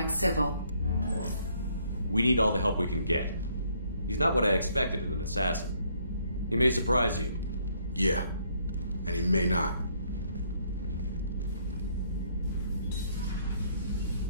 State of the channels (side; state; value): both; inverted; correlation -0.67